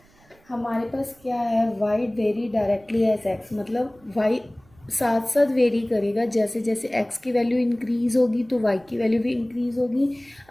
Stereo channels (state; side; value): noise; right; rumble, 30 dB below the sound